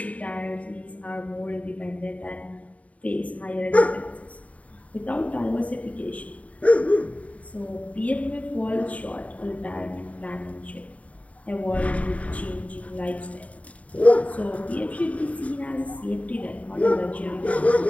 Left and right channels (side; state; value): right; late; 0.068 ms